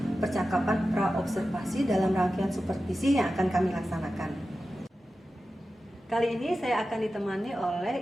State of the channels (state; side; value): normal; both; correlation 0.93